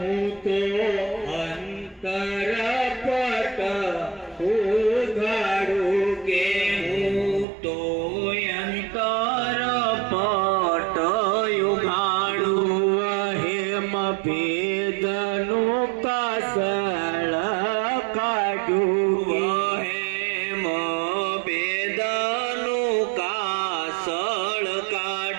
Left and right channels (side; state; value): left; drops out; at 7.5 s